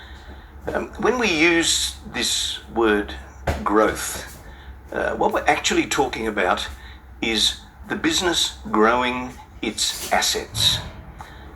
When we use this word growth, what we're actually talking about is the business growing its assets.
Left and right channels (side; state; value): both; identical; correlation 1.00